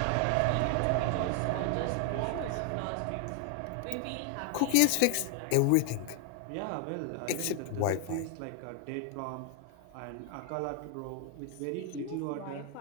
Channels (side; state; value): both; different; correlation 0.00